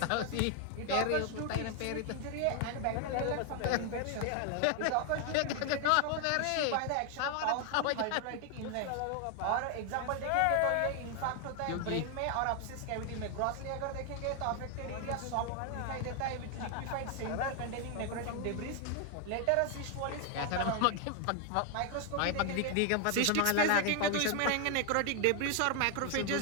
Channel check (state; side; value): different; both; correlation 0.00